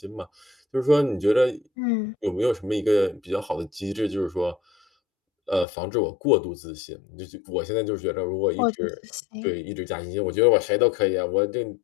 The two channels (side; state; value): right; drops out; at 5.7 s